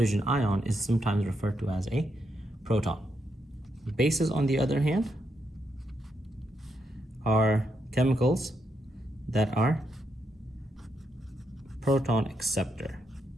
ion is sometimes referred to as a proton. Bases, on the other hand, are chemicals that are proton acceptor.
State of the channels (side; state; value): both; normal; correlation 0.80